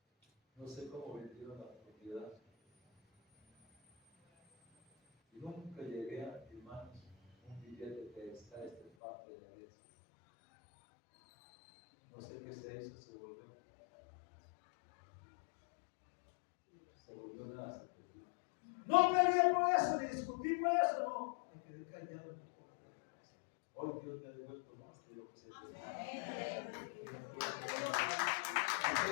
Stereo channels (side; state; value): right; drops out; at 8.9 s